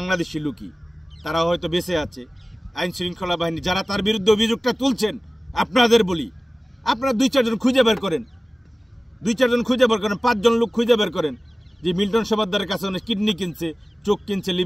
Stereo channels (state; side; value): normal; both; correlation 0.97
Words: লোকই, তারা হয়তো বেঁচে আছে। আইন শৃঙ্খলা বাহিনী যারা তার বিরুদ্ধে অভিযোগটা তুলছেন, আপনাদের বলি, আপনারা 2-4 জন খুঁজে বের করেন, 2-4 জন খুঁজে বের করেন, 5 জন লোক খুঁজে বের করেন, যে মিল্টন সমাদ্দারের কাছে অনেক কিডনি কিনছে, চোখ কিনছে,